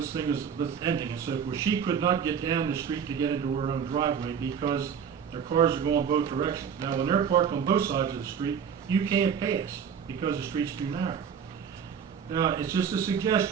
thing is ending and so forth. She could not get down the street to get into her own driveway because their cars are going both directions. Now, when they're parked on both sides of the street, you can't pass because the street's too narrow. Now, it's just a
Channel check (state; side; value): quieter; left; 7.4 dB